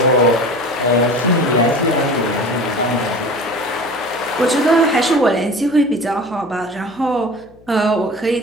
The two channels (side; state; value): left; noise; hum, 27 dB below the sound